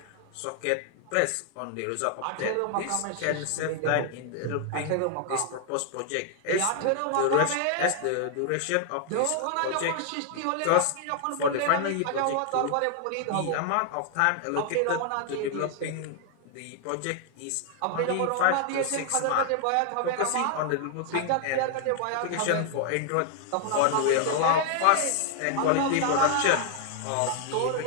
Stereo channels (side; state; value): both; different; correlation 0.00